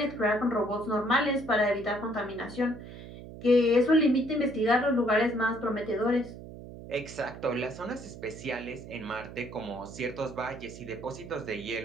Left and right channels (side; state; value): right; noise; hum, 14 dB below the sound